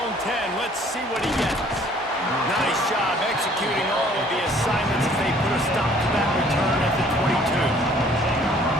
10, let's see what he gets. Nice job executing all of the assignments as they put a stop to that return at the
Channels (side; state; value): both; normal; correlation 0.58